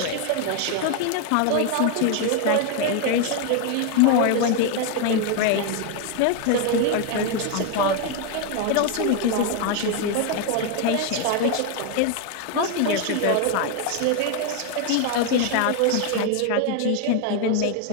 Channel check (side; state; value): both; different; correlation 0.01